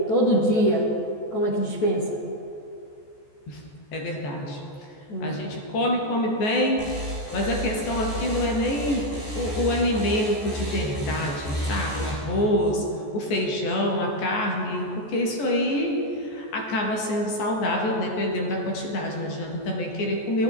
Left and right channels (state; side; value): late; right; 14 ms